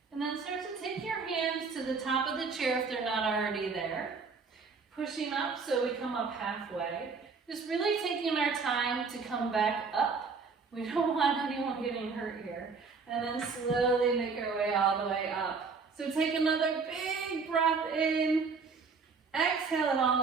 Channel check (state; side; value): quieter; left; 4.9 dB